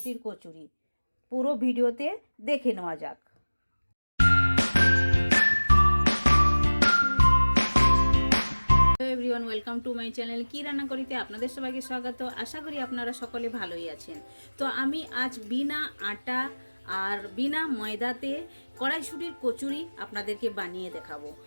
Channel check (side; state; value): both; inverted; correlation -1.00